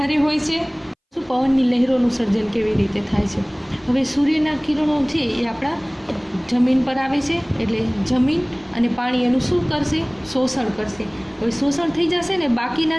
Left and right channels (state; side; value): identical; both; correlation 1.00